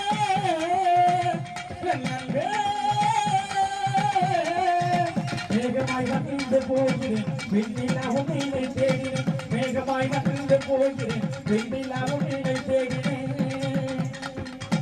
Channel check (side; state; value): both; identical; correlation 1.00